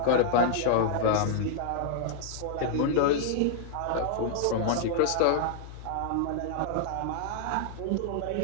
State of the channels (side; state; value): both; different; correlation -0.01